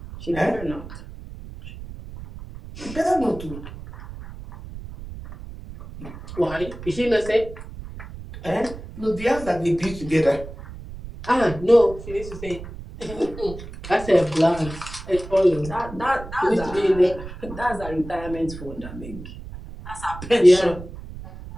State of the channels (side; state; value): right; noise; rumble, 13 dB below the sound